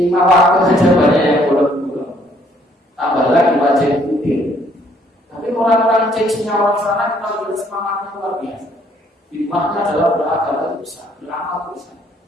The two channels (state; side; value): normal; both; correlation 0.65